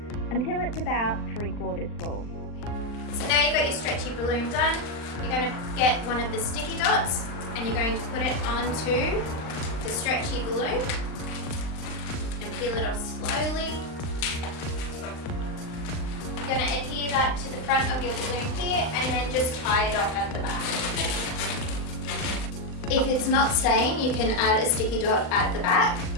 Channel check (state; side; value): late; right; 39 ms